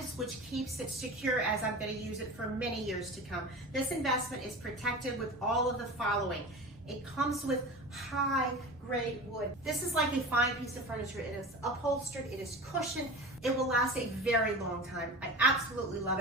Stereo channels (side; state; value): both; normal; correlation 0.32